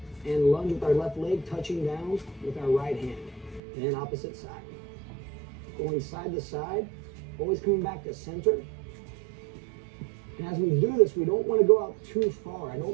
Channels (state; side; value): drops out; left; at 3.6 s